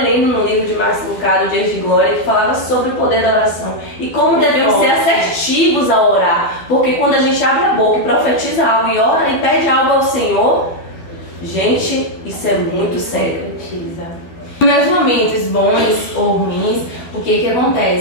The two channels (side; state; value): right; late; 12 ms